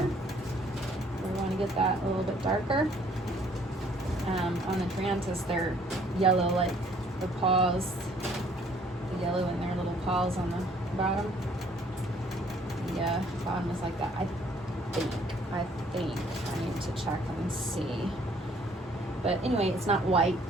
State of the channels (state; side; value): normal; both; correlation 0.61